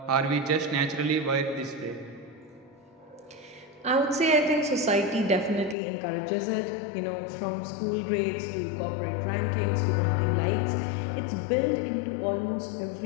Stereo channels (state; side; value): drops out; right; at 5.8 s